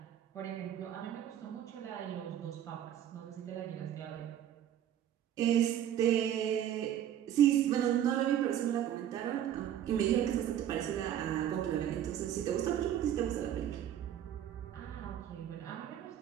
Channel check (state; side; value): quieter; left; 10.7 dB